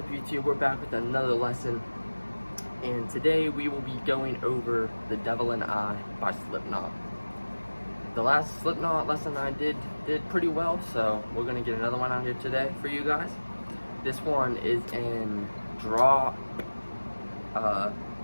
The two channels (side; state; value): both; inverted; correlation -1.00